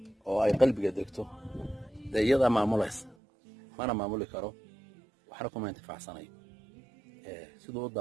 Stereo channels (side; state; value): left; drops out; at 3.2 s